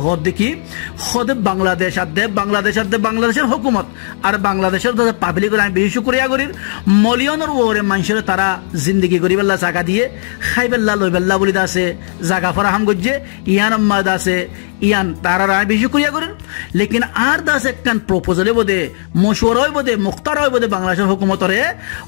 হদ দেখি হদ বাংলাদেশ আদে বাংলাদেশের হুকুমত আর বাংলাদেশের পাবলিক আমি বেশি করিয়া করির মলিয়নের ওরে মানুষের তারা জিন্দগি করিবেল্লা জায়গা দিয়ে খাইবেল্লা লইবেল্লা বলি আছে জায়গা ফরাহাম করছে ইয়ান আম্মাদ আছে ইয়ান তারা রায় বেশি করিয়া করেন লেকিন আর দাস একখান প্রপোজালে বোধে মশওয়ারাই বোধে মুখতারাই বোধে বাংলাদেশের হুকুমতরে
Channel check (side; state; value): right; silent; digital silence